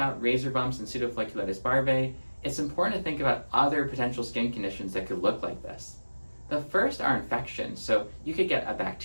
razor bumps and pseudofolliculitis barbae, it's important to think about other potential skin conditions that could look like this. The first are infections. So you could get a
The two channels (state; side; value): inverted; both; correlation -1.00